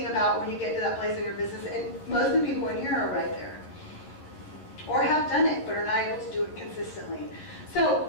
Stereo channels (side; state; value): right; late; 11 ms